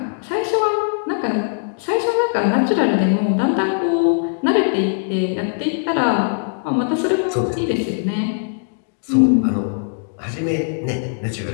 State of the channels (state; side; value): silent; right; digital silence